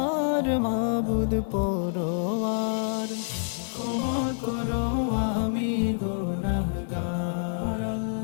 মাবুদ পরওয়ার, ক্ষমা করো আমি গুনাহগার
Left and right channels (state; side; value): silent; right; 59 dB below the other